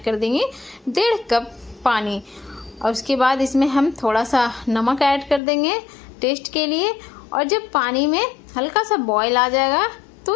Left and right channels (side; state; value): right; drops out; at 5.4 s